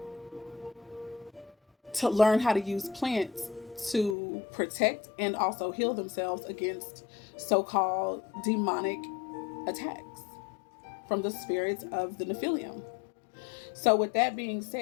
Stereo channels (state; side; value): drops out; right; at 4.2 s